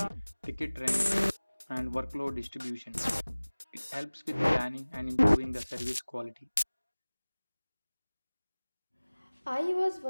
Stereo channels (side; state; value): both; inverted; correlation -1.00